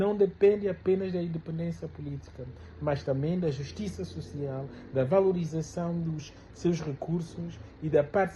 depende apenas da independência política, mas também da justiça social, da valorização dos seus recursos e da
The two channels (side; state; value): both; identical; correlation 1.00